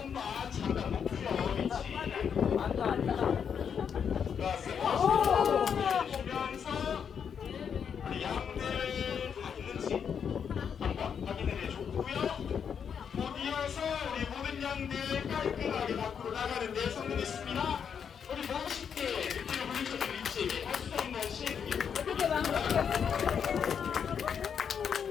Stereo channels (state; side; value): quieter; right; 7.3 dB